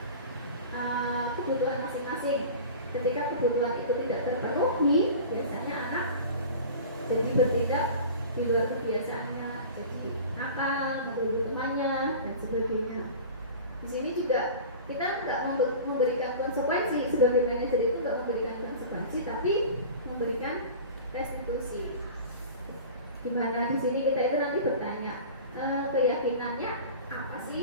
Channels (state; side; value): inverted; both; correlation -0.37